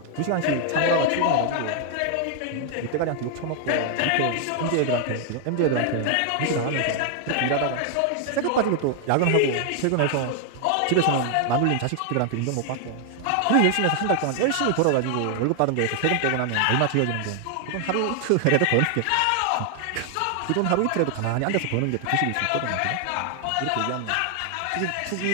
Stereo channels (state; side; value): different; both; correlation 0.00